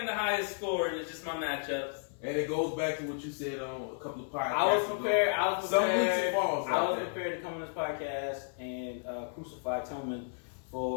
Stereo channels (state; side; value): silent; right; 56 dB below the other